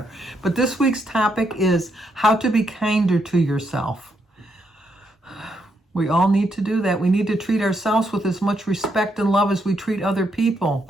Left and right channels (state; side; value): normal; both; correlation 0.78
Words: But this week's topic is how to be kinder to yourself. We all need to do that. We need to treat ourselves with as much respect and love as we treat other people.